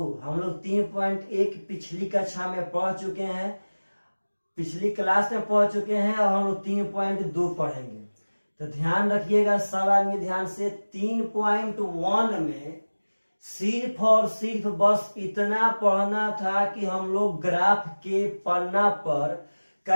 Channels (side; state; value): both; inverted; correlation -1.00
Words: हम लोग 3.1 पिछली कक्षा में पढ़ चुके हैं, पिछली क्लास में पढ़ चुके हैं और हम लोग 3.2 पढ़ेंगे। तो ध्यान रखिएगा सब आदमी ध्यान से। 3.1 में सिर्फ और सिर्फ बस इतना पढ़ना था कि हम लोग ग्राफ के पन्ना पर